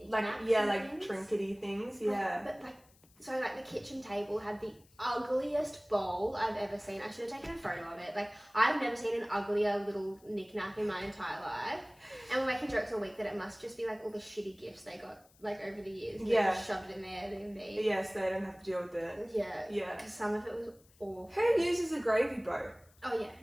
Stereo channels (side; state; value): left; noise; hiss, 29 dB below the sound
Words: Like, yeah, and like things. trinkety things, Like, yeah. but like, so like the kitchen table had the ugliest bowl I've ever seen. I should have taken a photo of it. Like, I've never seen an uglier little knickknack in my entire life. And we're making jokes all week that it must just be like all the shitty gifts they got like over the years. And they Yeah. just shoved it in their Airbnb. Yes, they don't have to deal with it. Yeah. Yeah. Because some of it was awful. Who uses a gravy boat? Oh yeah,